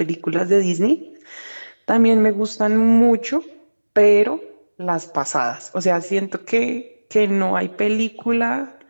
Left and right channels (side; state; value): both; inverted; correlation -1.00